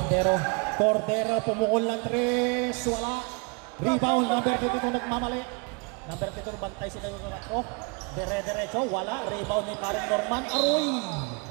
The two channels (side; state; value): left; quieter; 32.1 dB